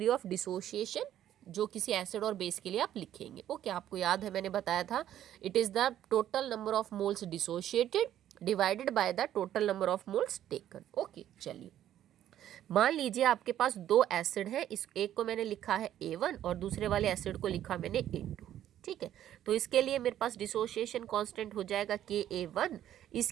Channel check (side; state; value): left; quieter; 11.6 dB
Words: of dissociation जो किसी एसिड और बेस के लिए आप लिखेंगे। ओके, आपको याद है मैंने बताया था it is the total number of moles dissociated divided by the total number of moles taken. Okay, चलिए मान लीजिए आपके पास दो एसिड है, इस एक को मैंने लिखा है A1 और दूसरे वाले एसिड को लिखा मैंने A2। ठीक ठीक है। तो इसके लिए मेरे पास डिसोसिएशन कांस्टेंट हो जाएगा Ka1,